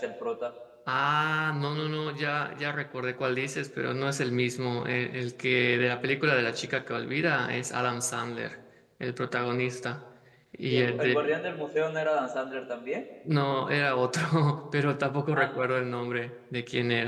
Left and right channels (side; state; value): both; identical; correlation 1.00